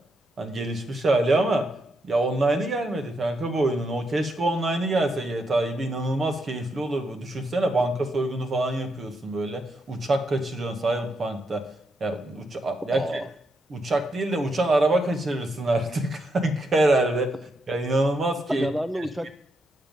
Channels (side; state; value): both; normal; correlation 0.80